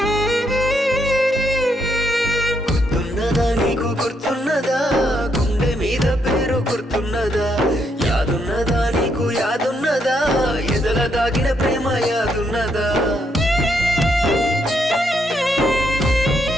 గుర్తున్నదా నీకు గుర్తున్నదా గుండె మీద పేరు గుర్తున్నదా యాదున్నదా నీకు యాదున్నదా ఎదల దాగిన ప్రేమ యాదున్నదా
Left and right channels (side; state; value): both; normal; correlation 0.76